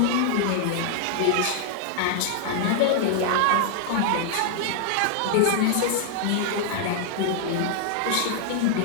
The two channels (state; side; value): different; both; correlation 0.00